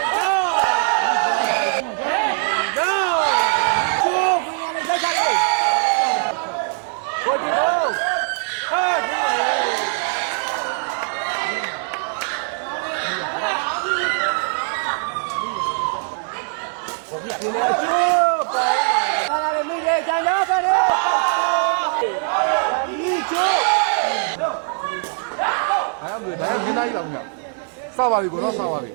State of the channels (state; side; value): silent; left; 57 dB below the other